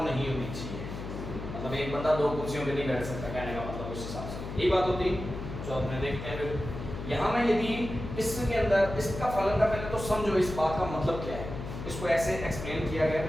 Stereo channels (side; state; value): left; noise; hum, 8 dB below the sound